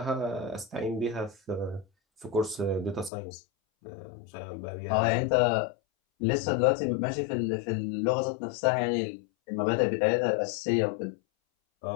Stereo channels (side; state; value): right; drops out; at 3.1 s